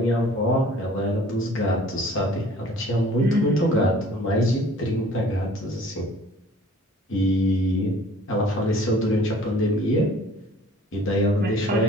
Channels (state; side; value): normal; both; correlation 0.51